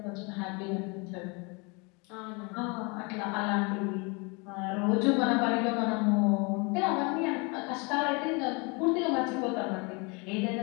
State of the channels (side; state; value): right; quieter; 30.4 dB